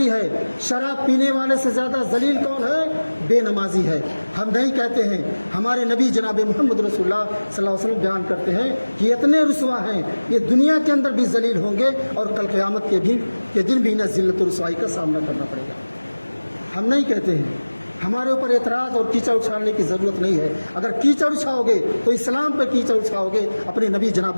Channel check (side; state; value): both; inverted; correlation -1.00